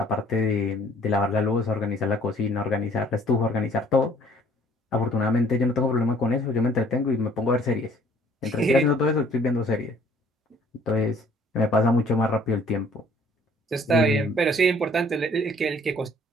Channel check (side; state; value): both; normal; correlation 0.57